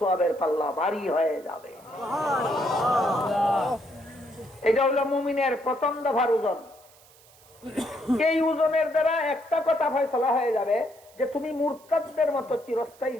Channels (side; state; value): right; noise; hiss, 26 dB below the sound